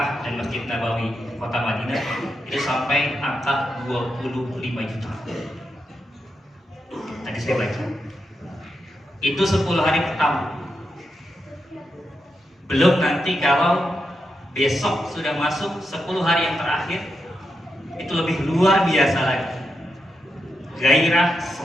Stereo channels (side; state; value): both; normal; correlation 0.85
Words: dan Masjid Nabawi kota Madinah itu sampai angka 25 juta. Tadi saya baca. Itu 10 hari pertama. Belum nanti kalau besok sudah masuk 10 hari yang terakhir, itu lebih luar biasa lagi. Gairah,